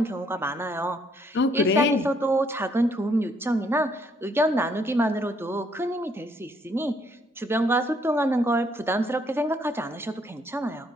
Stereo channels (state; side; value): normal; both; correlation 0.68